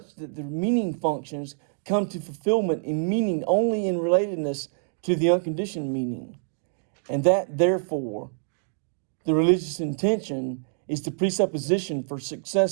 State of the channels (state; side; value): silent; left; digital silence